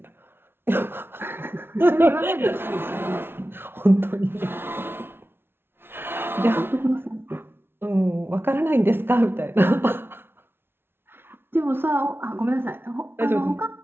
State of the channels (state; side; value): late; left; 0.11 ms